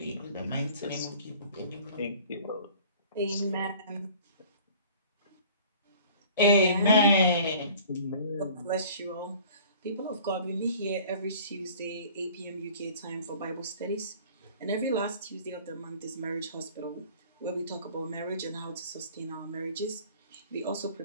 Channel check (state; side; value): inverted; both; correlation -0.48